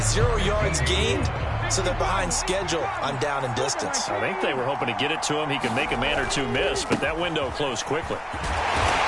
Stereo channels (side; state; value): both; identical; correlation 1.00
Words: yards gained, so they're behind schedule on down and distance. I think they were hoping to get it to him. He could make a man or two miss, but that window closed quickly.